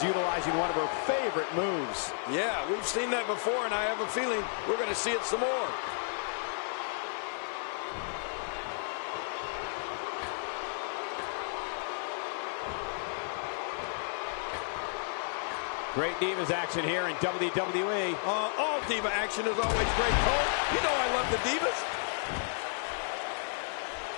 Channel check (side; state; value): right; silent; 55 dB below the other